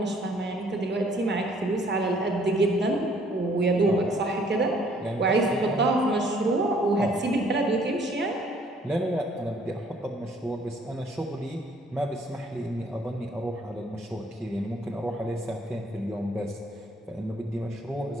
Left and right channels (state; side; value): normal; both; correlation 0.61